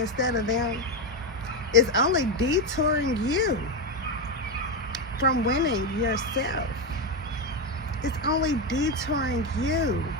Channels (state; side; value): normal; both; correlation 0.09